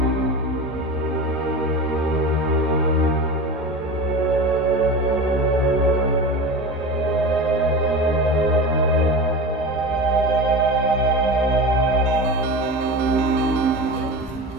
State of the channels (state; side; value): normal; both; correlation 0.28